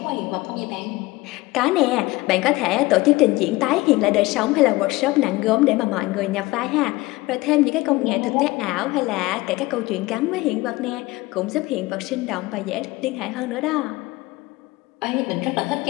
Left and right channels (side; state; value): right; quieter; 20.6 dB